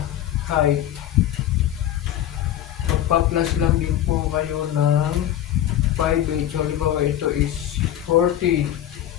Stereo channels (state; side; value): quieter; right; 11.7 dB